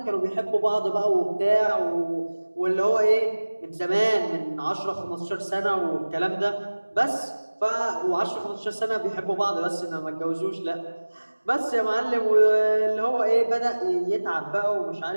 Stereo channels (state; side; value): inverted; both; correlation -1.00